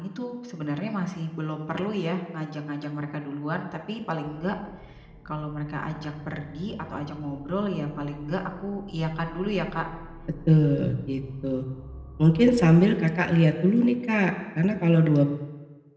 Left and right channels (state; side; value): identical; both; correlation 1.00